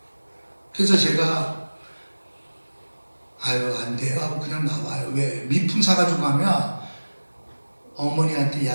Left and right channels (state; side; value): inverted; both; correlation -1.00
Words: 그래서 제가 아유 안 돼요 하고 그냥 나와요. 왜? 미풍 사가지고 가면 어머니한테